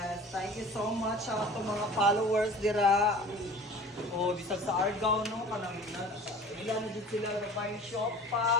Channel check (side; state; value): both; normal; correlation 0.42